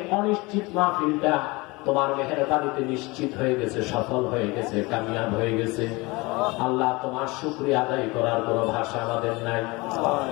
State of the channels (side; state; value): right; quieter; 24.2 dB